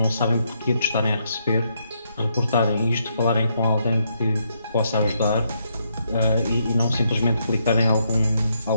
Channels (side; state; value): both; inverted; correlation -0.77